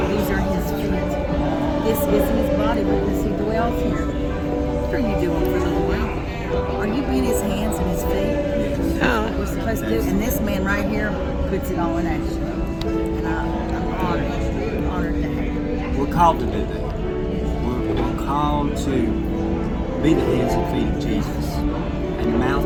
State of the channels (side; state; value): both; identical; correlation 1.00